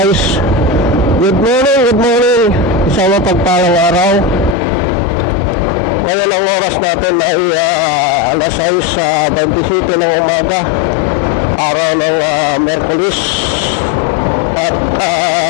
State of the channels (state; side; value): drops out; right; at 4.5 s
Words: Good morning. Isang mapagpalang araw. Ngayon ang oras natin ay alas 6:27 ng umaga, araw ng Merkulis. At